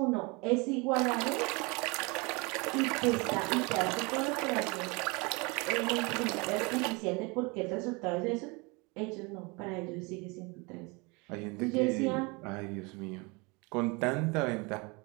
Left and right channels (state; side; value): quieter; left; 28.0 dB